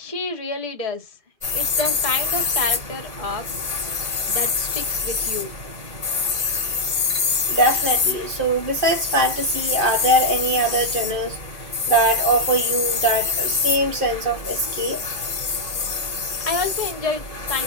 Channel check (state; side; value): late; left; 2.4 ms